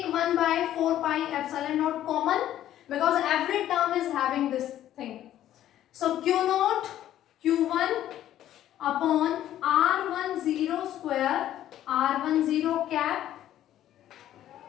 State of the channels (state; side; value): quieter; right; 12.3 dB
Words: 1 by 4 pi epsilon naught common because every term is having this thing. So Q naught Q1 upon R10 square R10 cap